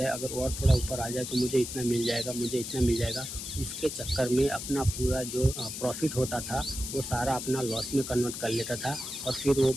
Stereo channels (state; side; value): noise; left; hiss, 7 dB below the sound